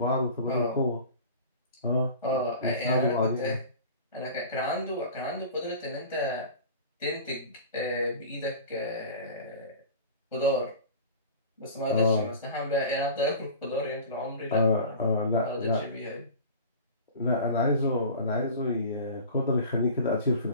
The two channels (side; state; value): both; inverted; correlation -0.38